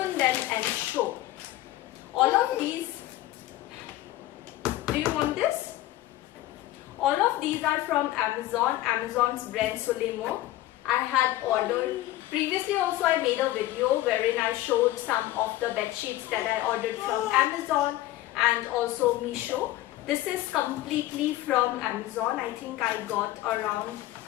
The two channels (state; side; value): quieter; right; 15.5 dB